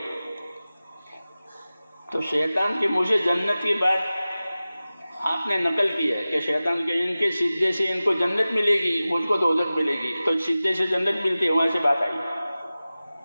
تو شیطان کے منہ سے جنت کی بات آپ نے نقل کی ہے کہ شیطان کے ان کے سجدے سے ان کو جنت ملے گی، مجھ کو دوزخ ملے گی، تو سجدے سے جنت ملتی ہے، وہاں سے بات آئی۔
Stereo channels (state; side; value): inverted; both; correlation -0.96